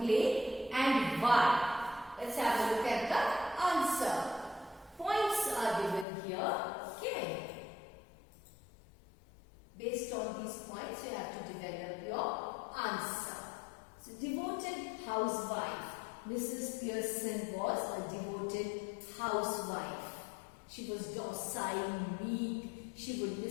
and why? Let's have a look at the answer. Points are given here. Okay. Based on these points, you have to develop your answer. So, devoted housewife. Mrs. Pearson was a devoted housewife. She was docile, meek. She would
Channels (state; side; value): drops out; right; at 6.1 s